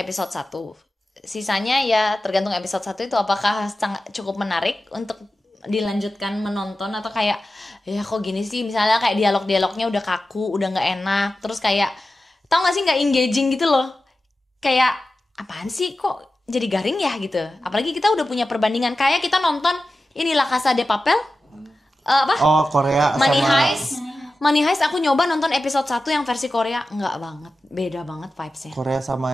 1. Sisanya ya tergantung episode 1 itu apakah cukup menarik untuk dilanjutkan menonton atau kayak ya kok gini sih, misalnya kayak dialog-dialognya udah kaku, udah nggak enak, terus kayak tau gak sih nggak engaging gitu loh, kayak apaan sih kok jadi garing ya gitu. Apalagi kita udah punya perbandingan kayak kita nonton inilah Casa de Papel, apa Oh, Korea Money sama Heist. Money Heist aku nyoba nonton episode 1 yang versi Korea, nggak banget, beda banget vibesnya. Korea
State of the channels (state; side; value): normal; both; correlation 0.94